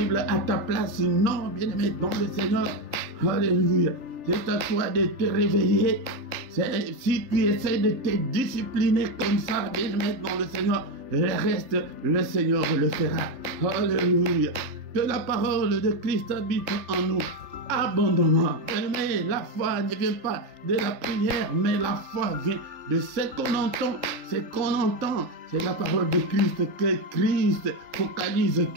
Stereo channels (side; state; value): left; late; 3.4 ms